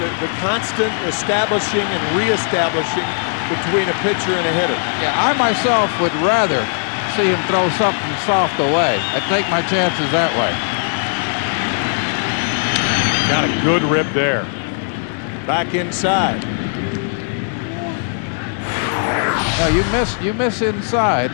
constant establishing and reestablishing between a pitcher and a hitter. Yeah, I myself would rather see him throw something soft away. I'd take my chances that way. Got a good rip there. Back inside. No, you miss inside.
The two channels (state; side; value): silent; right; 57 dB below the other